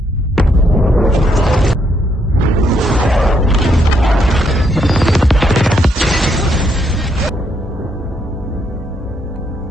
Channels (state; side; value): normal; both; correlation 0.75